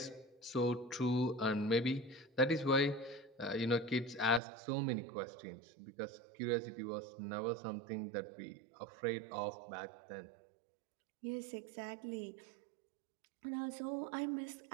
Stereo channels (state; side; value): drops out; left; at 4.4 s